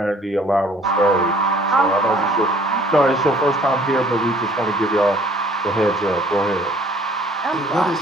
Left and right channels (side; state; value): both; normal; correlation 0.56